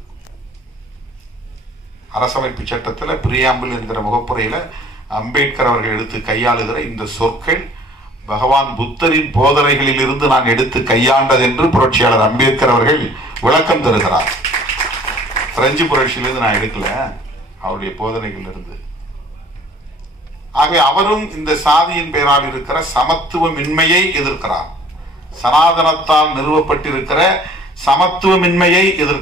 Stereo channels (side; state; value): both; normal; correlation 0.53